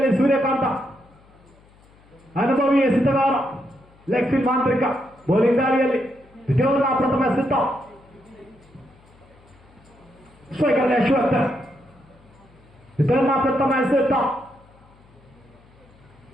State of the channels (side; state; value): left; noise; hum, 28 dB below the sound